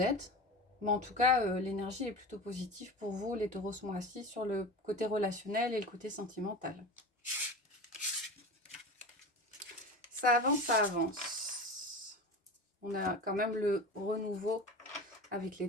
Mais en tout cas, l'énergie est plutôt positive pour vous, les taureaux, ce mois-ci, sur le côté relationnel et le côté sentimental. Ça avance, ça avance. On a quand même le renouveau avec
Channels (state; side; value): normal; both; correlation 0.31